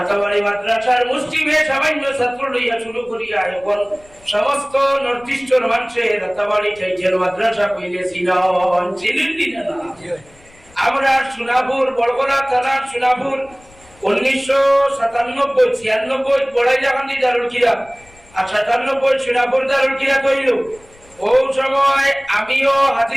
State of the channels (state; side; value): noise; left; rumble, 27 dB below the sound